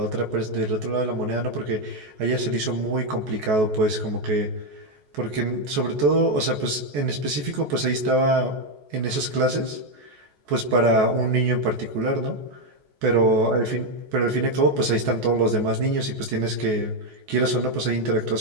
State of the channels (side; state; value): left; late; 14 ms